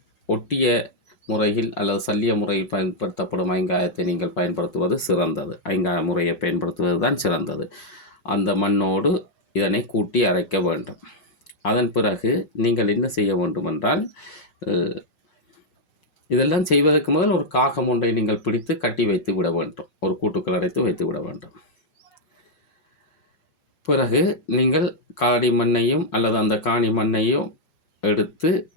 ஒட்டிய முறையில் அல்லது சல்லிய முறையில் பயன்படுத்தப்படும் ஐங்காயத்தை நீங்கள் பயன்படுத்துவது சிறந்தது. ஐங்காய முறையை பயன்படுத்துவது தான் சிறந்தது. அந்த மண்ணோடு இதனை கூட்டி அரைக்க வேண்டும். அதன் பிறகு நீங்கள் என்ன செய்ய வேண்டும் என்றால் இதெல்லாம் செய்வதற்கு முதல் ஒரு காகம் ஒன்றை நீங்கள் பிடித்து கட்டி வைத்து விட வேண்டும். ஒரு கூட்டுக்குள் அடைத்து வைத்து விட வேண்டும். பிறகு நீங்கள் காடி மண்ணையும் அல்லது அந்த காணி மண்ணையும் எடுத்து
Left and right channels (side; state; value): right; late; 5.6 ms